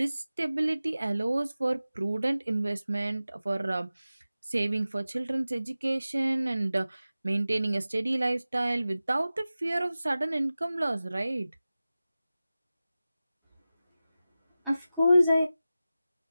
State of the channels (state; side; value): inverted; both; correlation -0.95